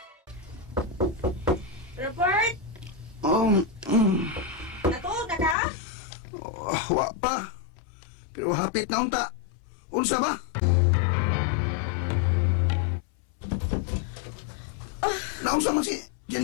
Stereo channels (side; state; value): right; drops out; at 5.6 s